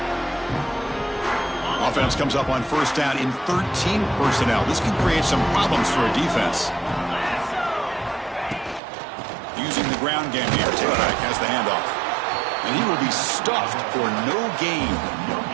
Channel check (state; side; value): drops out; left; at 8.8 s